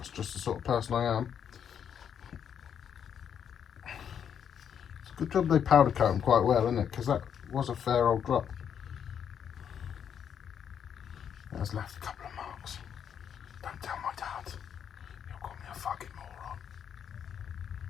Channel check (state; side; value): quieter; right; 8.3 dB